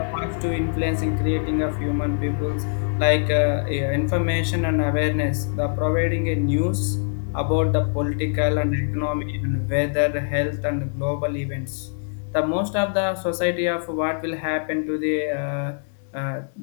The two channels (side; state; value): right; silent; digital silence